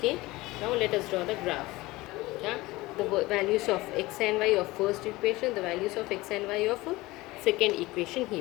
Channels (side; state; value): right; quieter; 20.2 dB